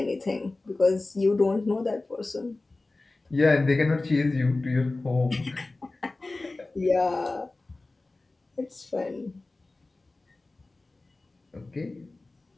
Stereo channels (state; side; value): quieter; right; 3.2 dB